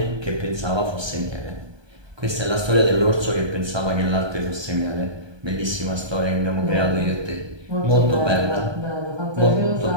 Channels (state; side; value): late; left; 1.2 ms